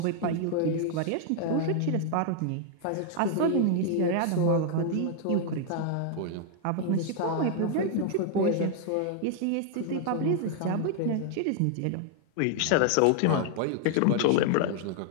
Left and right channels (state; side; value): different; both; correlation 0.00